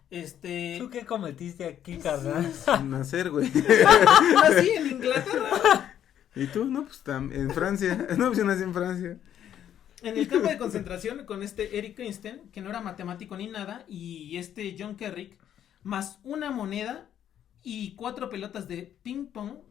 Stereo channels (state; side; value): quieter; right; 10.2 dB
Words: ¿Tú qué cometiste aquí, carnal? Nacer, güey. Nací en Inglaterra. ¿Y tú? No, pues en Francia. No, pues yo nací en Francia. En el campo de concentración con Erik Christensen, que no era matemático ni nada, y John Kerrick, más una moneda y 4 pelotas de ping pong,